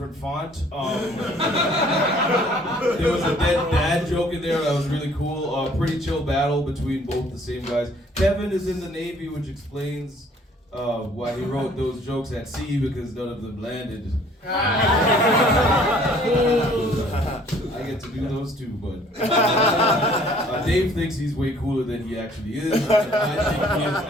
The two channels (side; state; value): both; normal; correlation 0.57